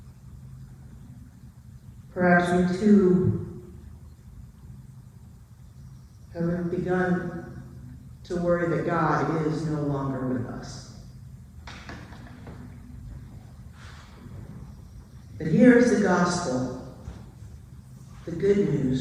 perhaps we too have begun to worry that God is no longer with us. But here is the gospel, the good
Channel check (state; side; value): identical; both; correlation 1.00